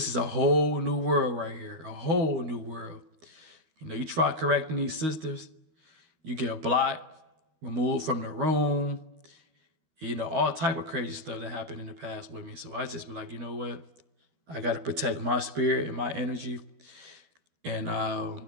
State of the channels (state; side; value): late; left; 13 ms